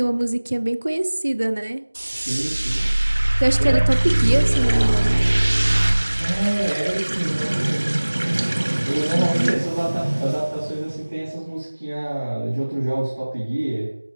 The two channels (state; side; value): inverted; both; correlation -1.00